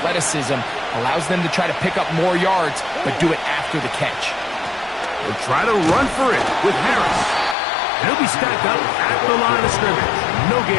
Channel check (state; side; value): drops out; right; at 7.6 s